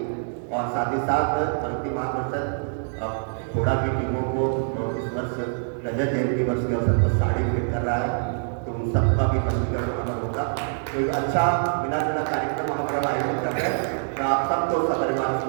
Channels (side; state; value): left; silent; digital silence